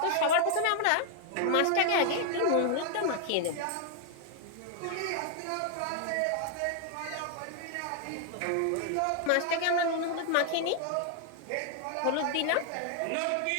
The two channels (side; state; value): both; different; correlation 0.00